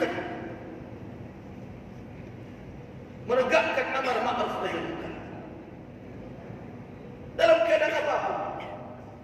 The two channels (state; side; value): identical; both; correlation 1.00